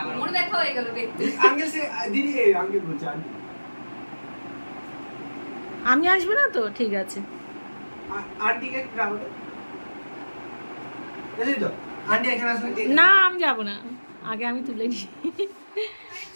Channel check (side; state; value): both; inverted; correlation -1.00